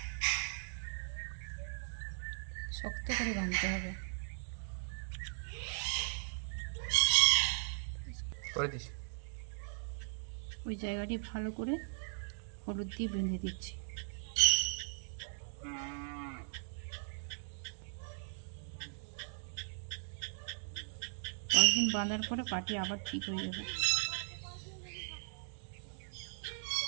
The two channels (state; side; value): silent; left; digital silence